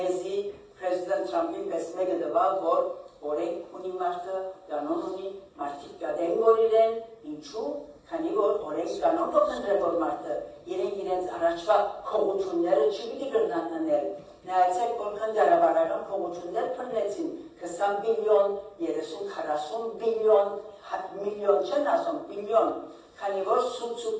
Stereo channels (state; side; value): identical; both; correlation 1.00